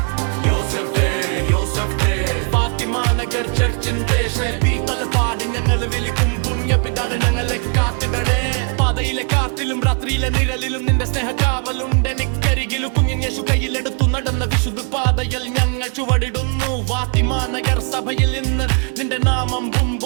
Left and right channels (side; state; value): left; quieter; 38.7 dB